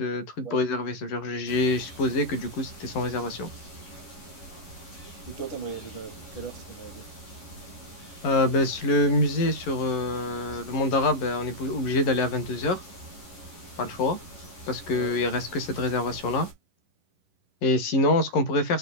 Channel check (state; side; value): late; right; 11 ms